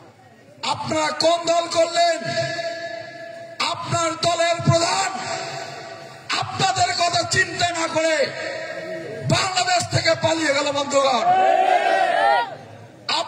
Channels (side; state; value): both; identical; correlation 1.00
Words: আপনারা কোন দল করলেন? আপনার দলের প্রধান আপনাদের কথা চিন্তা না করে বাংলাদেশ থেকে পালিয়ে গেল বন্ধুগণ।